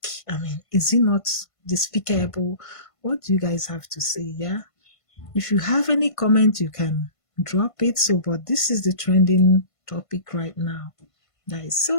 I mean, is it not despicable? What do you guys have to say? Yeah. If you have any comment, you can drop it. So, but this is the trending topic right now, guys.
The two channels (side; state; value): right; late; 1.5 ms